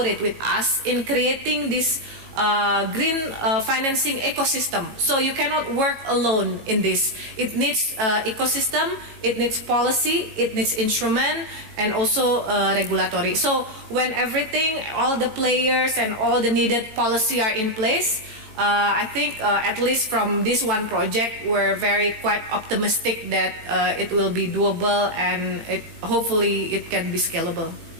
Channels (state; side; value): late; left; 18 ms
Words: with us in creating this green financing ecosystem. So you cannot work alone in this. It needs ecosystem, it needs policy, it needs instrument, and also regulatory. So when everything, all the players and all the needed policy are in place, I think at least from this one project, we're quite optimistic that it will be doable and hopefully it can be scalable.